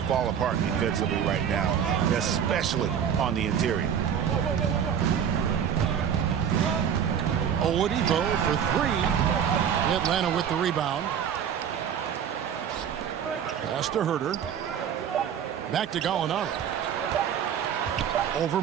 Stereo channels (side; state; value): left; quieter; 8.4 dB